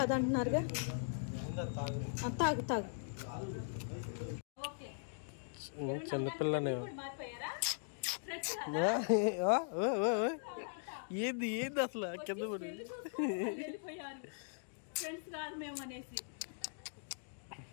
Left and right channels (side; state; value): right; silent; digital silence